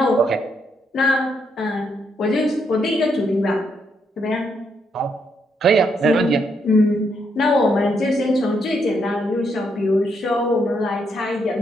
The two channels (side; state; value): both; normal; correlation 0.76